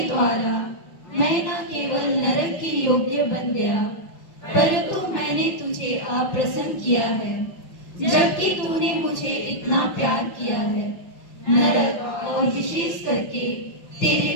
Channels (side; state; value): right; late; 5.4 ms